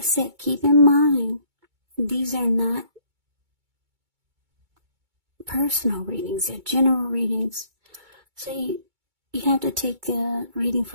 said, keep in mind, these are not personal readings, they're general readings. So you have to take the reading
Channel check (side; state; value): left; late; 2.2 ms